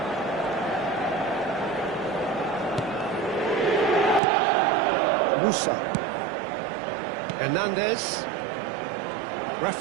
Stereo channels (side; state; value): left; drops out; at 4.2 s